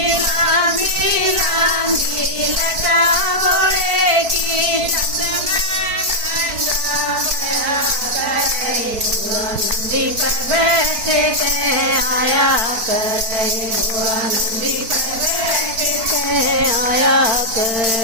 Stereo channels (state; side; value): late; left; 4.5 ms